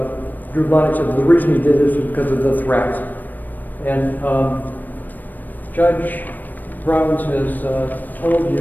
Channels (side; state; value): right; late; 0.088 ms